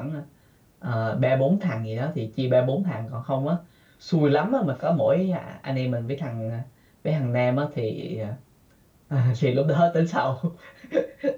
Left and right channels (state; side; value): identical; both; correlation 1.00